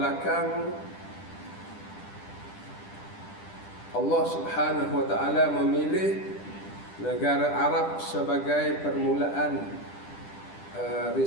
Allah Subhanahu wa taala memilih negara Arab sebagai permulaan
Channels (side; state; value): right; late; 10 ms